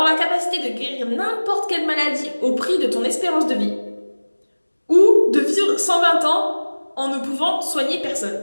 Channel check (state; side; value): inverted; both; correlation -1.00